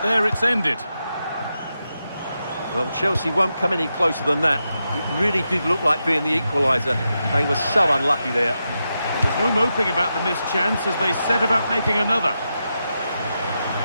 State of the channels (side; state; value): both; inverted; correlation -0.87